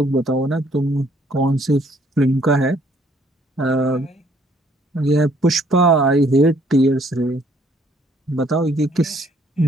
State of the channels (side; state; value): both; normal; correlation 0.64